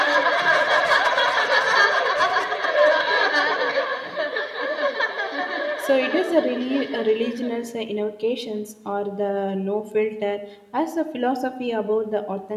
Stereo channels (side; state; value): both; identical; correlation 1.00